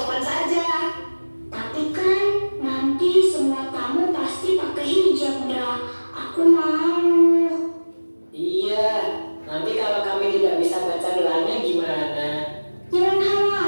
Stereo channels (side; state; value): both; inverted; correlation -1.00